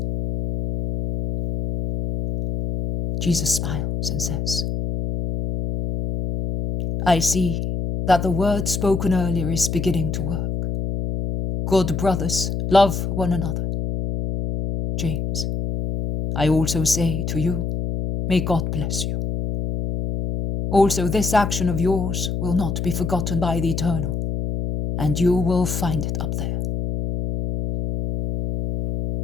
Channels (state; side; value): noise; left; hum, 2 dB below the sound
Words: Jesus smiles and says, "I see that the word spoken earlier is beginning to work. Good brothers, love one another. James, I also say to you, may God bless you. Also, this action of yours will not be forgotten by the Eternal, and you will find it up there.